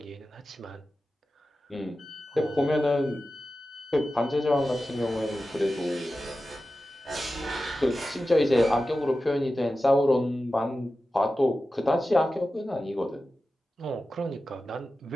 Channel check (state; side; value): normal; both; correlation 0.93